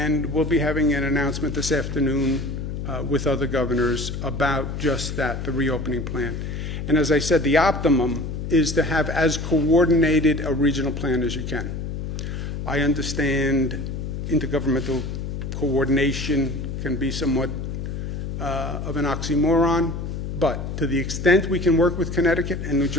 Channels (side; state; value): left; noise; hum, 5 dB below the sound